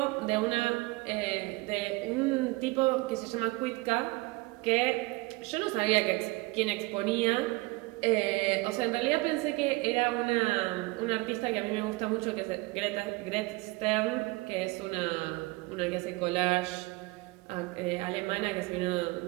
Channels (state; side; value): quieter; left; 23.5 dB